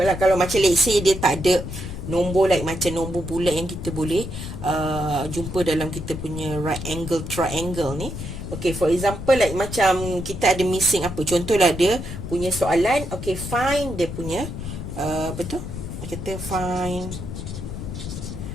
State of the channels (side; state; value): left; noise; rumble, 7 dB below the sound